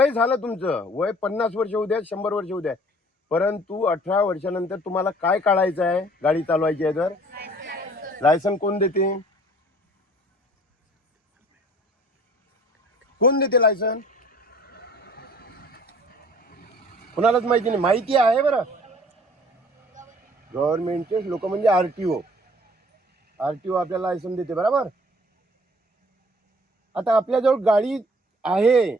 झालं तुमचं वय 50 वर्ष होऊ द्या, 100 वर्ष होऊ द्या, परंतु 18 वर्षानंतर तुम्हाला काय काढायचं आहे, गाडी चालवायची आहे तर लायसन कोण देते? कोण देते लायसन? कोणालाच माहिती नाही. माहिती आहे बरं, गव्हर्नमेंटचे लोक म्हणजे आरटीओ आपल्याला लायसन देते, बरोबर. आता आपल्याजवळ गाडी आहे,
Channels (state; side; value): normal; both; correlation 0.53